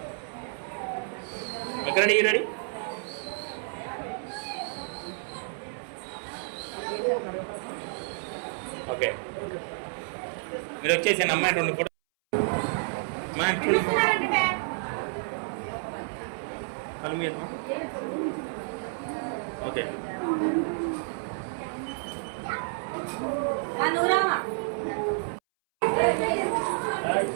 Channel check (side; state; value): left; silent; 58 dB below the other